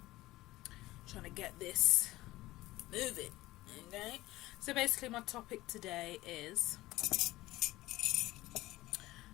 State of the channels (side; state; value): right; quieter; 17.7 dB